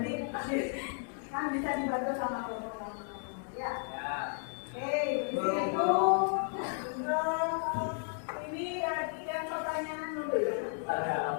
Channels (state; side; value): silent; right; 55 dB below the other